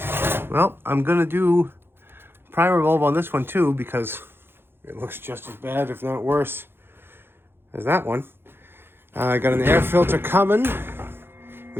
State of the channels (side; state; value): left; late; 0.11 ms